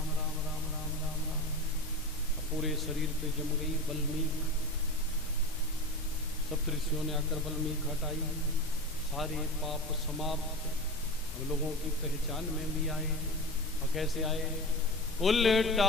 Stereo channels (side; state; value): left; noise; rumble, 16 dB below the sound